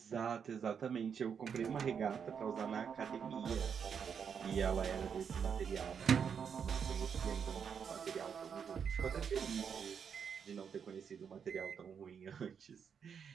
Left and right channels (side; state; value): left; quieter; 7.0 dB